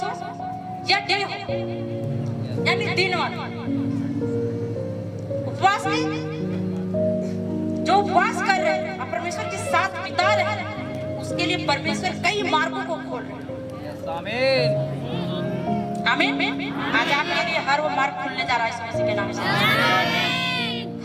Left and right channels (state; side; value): identical; both; correlation 1.00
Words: हो या डे हो, यानी दिन वाला उपवास में जो उपवास कर रहे हैं और परमेश्वर के साथ बिता रहे हैं, उसके लिए परमेश्वर कई मार्गों को खोल रहे हैं। आमीन। आमीन। आज आपके लिए हर वो मार्ग खुलने जा रहा है यीशु मसीह के नाम से।